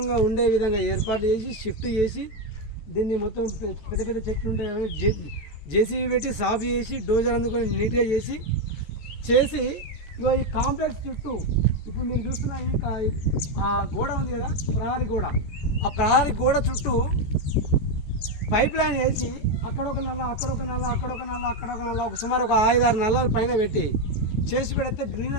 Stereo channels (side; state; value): right; late; 14 ms